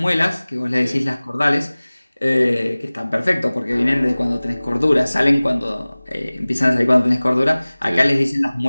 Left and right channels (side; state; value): both; inverted; correlation -0.99